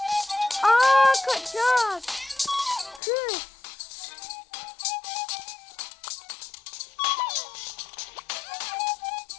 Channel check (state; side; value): drops out; right; at 3.0 s